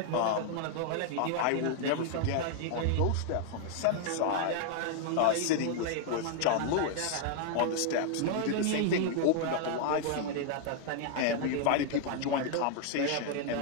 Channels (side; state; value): both; different; correlation 0.00